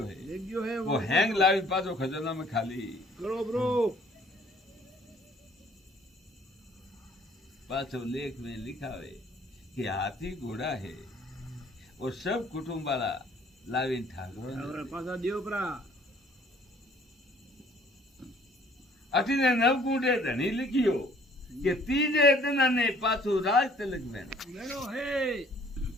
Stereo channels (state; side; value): normal; both; correlation 0.57